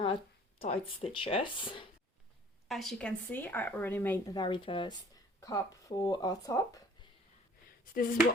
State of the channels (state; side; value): normal; both; correlation 0.53